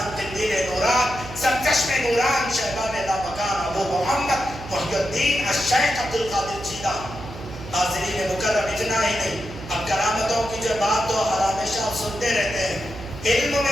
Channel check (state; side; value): noise; right; hum, 13 dB below the sound